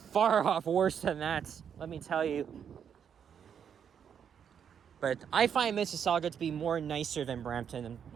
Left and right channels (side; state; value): left; quieter; 7.9 dB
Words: off worse than that, let me tell you. But I find Mississauga to be more nicer than Brampton.